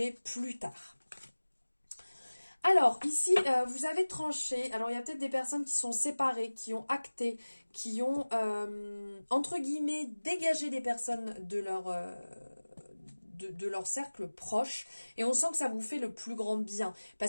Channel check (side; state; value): both; inverted; correlation -1.00